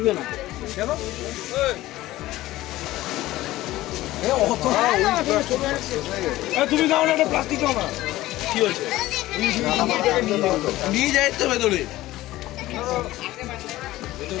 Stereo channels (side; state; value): right; quieter; 16.6 dB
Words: না কেন তুমি দাও না প্লাস্টিক দাও না কি হয়েছে নিয়ে যাই তো ভেতরে